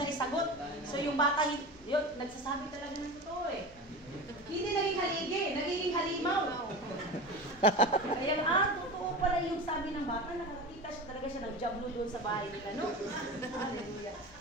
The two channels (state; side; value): noise; left; rumble, 23 dB below the sound